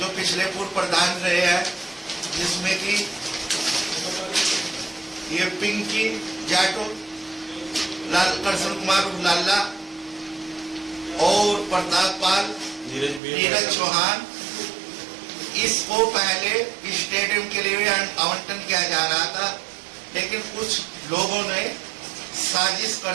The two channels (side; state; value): left; drops out; at 13.2 s